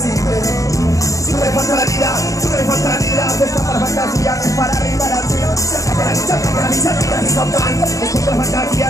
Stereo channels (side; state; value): right; late; 0.16 ms